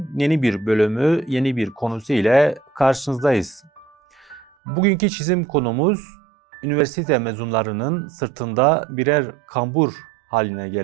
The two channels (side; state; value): left; drops out; at 4.5 s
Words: yeni bir bölümü, yeni bir konusu ile karşınızdayız. Bugünkü çizim konumuz üniversite mezunlarının sırtında birer kambur haline